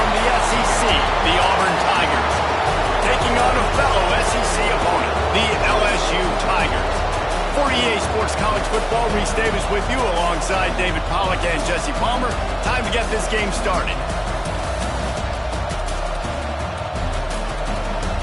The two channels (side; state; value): both; identical; correlation 1.00